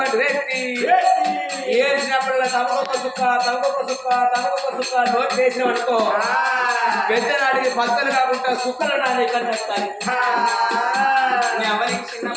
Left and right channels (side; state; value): both; identical; correlation 1.00